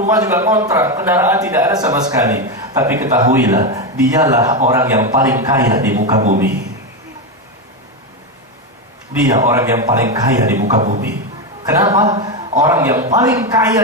juga kontrak, kendaraan tidak ada sama sekali, tapi ketahuilah, dialah orang yang paling kaya di muka bumi. Dia orang yang paling kaya di muka bumi. Kenapa? Orang yang paling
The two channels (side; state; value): both; normal; correlation 0.11